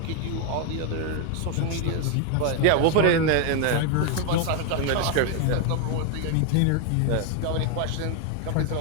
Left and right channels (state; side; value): different; both; correlation 0.01